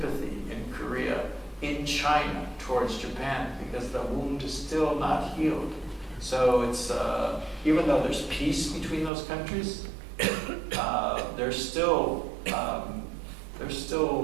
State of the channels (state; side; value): drops out; left; at 9.1 s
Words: in Korea, in China, towards Japan, because the wound is still not healed. So it's, even though there's peace between those countries, there's still there's